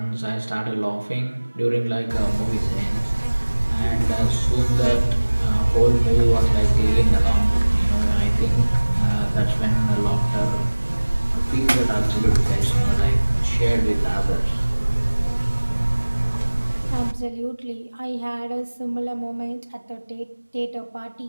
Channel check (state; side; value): inverted; both; correlation -1.00